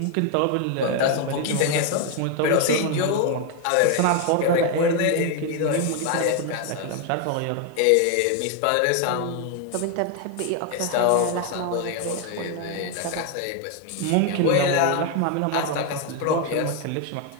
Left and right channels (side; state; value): both; different; correlation 0.01